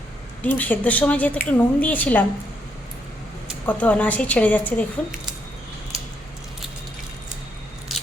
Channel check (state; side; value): normal; both; correlation 0.76